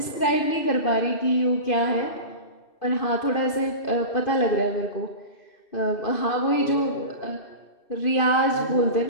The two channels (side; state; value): right; late; 2.5 ms